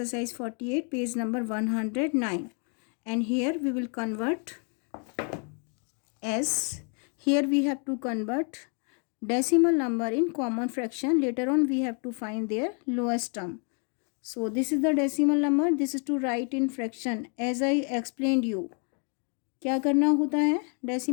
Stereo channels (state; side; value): quieter; right; 39.7 dB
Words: 48, page number 109. And here we will convert as, here we have to convert decimal number in common fraction. Later on we have to find their lowest term. So this is the decimal number. This is to write in fraction as I explained you. क्या करना होता है